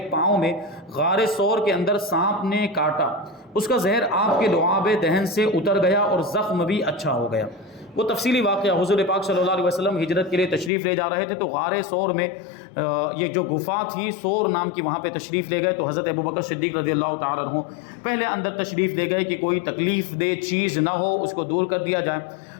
پاؤں میں غار ثور کے اندر سانپ نے کاٹا، اس کا زہر آپ کے لعاب دہن سے اتر گیا اور زخم بھی اچھا ہو گیا۔ وہ تفصیلی واقعہ حضور پاک صلی اللہ علیہ وسلم ہجرت کے لیے تشریف لے جا رہے تھے تو غار ثور میں یہ جو گفا تھی ثور نام کی، وہاں پہ تشریف لے گئے تو حضرت ابوبکر صدیق رضی اللہ تعالیٰ عنہ پہلے اندر تشریف لے گئے کہ کوئی تکلیف دہ چیز نہ ہو، اس کو دور کر دیا جائے۔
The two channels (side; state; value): right; drops out; at 10.7 s